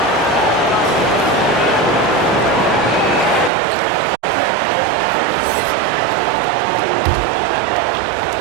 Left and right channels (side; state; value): left; drops out; at 3.5 s